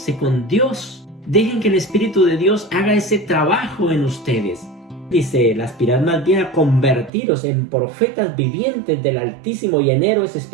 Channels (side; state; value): left; drops out; at 7.1 s